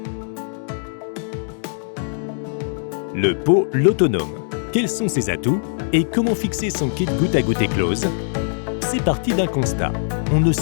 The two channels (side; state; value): right; silent; digital silence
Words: Le pot l'autonome. Quels sont ses atouts et comment fixer son kit goutte à goutte Eclose? C'est parti d'un constat. On ne